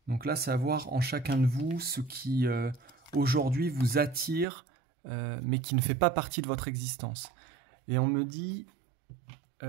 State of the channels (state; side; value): drops out; left; at 4.5 s